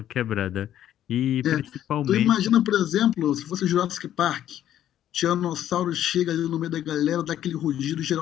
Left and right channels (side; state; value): right; quieter; 11.4 dB